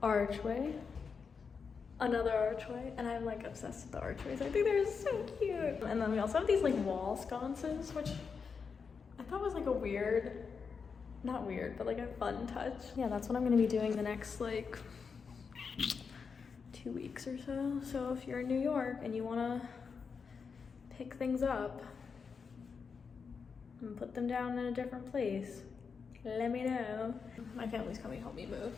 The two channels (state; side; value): quieter; right; 5.6 dB